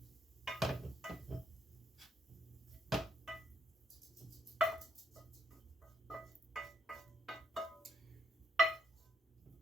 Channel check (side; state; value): both; normal; correlation 0.74